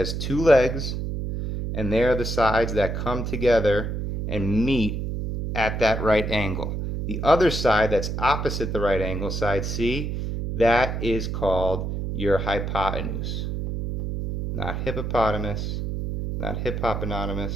two legs, and they are the sides that come together and meet at that right angle. The other side that's opposite the right angle, side C, that is called your hypotenuse. Not hippopotamus, not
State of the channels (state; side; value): noise; right; hum, 3 dB below the sound